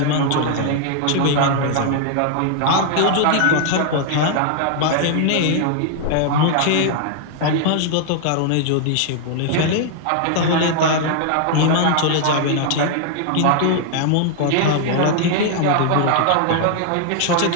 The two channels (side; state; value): both; different; correlation 0.00